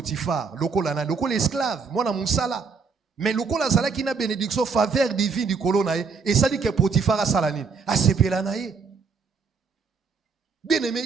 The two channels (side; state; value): left; quieter; 5.1 dB